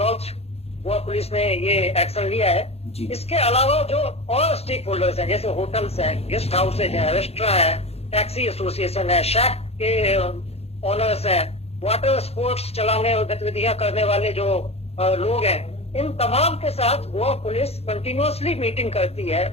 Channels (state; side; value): late; right; 0.29 ms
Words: गोवा पुलिस ने ये एक्शन लिया है। इसके अलावा जो और स्टेक होल्डर्स हैं, जैसे होटल्स हैं, गेस्ट हाउसेज हैं, रेस्टोरेंट है, टैक्सी एसोसिएशन है, शैक के ओनर्स हैं, वाटर स्पोर्ट्स चलाने और गतिविधियां करने वाले जो लोग हैं, इन तमाम के साथ गोवा पुलिस कंटिन्यूअसली मीटिंग करती है।